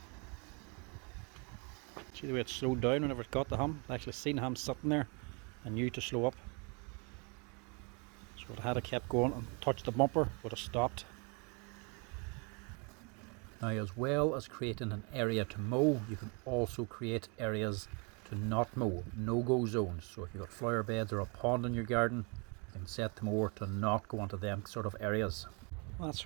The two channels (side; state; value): left; quieter; 33.5 dB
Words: See the way it slowed down whenever it got the hum? I actually seen him sitting there and knew to slow up. So it had to kept going and touched the bumper, would have stopped. Now, as well as creating an area to mow, you can also create areas to not mow, no-go zones. So if you've got flower beds or a pond in your garden, you can set the mower to not go into them sort of areas. That's